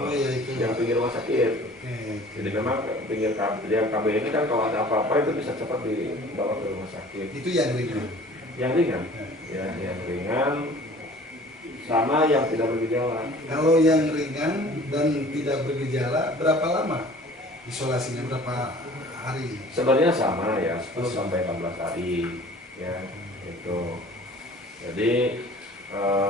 pinggir rumah sakit. Jadi memang pinggir KB ini kan kalau ada apa-apa itu bisa cepat dibawa ke rumah sakit. Itu yang ringan. Yang ringan, ya, yang ringan sama yang tidak bergejala. Kalau yang ringan dan tidak bergejala berapa lama isolasinya, berapa hari? Sebenarnya sama ya, 10 sampai 14 hari, ya, itu. Jadi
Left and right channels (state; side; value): normal; both; correlation 0.48